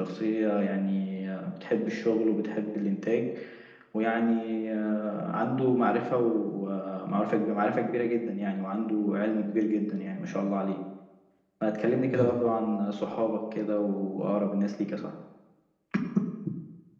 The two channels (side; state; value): both; identical; correlation 1.00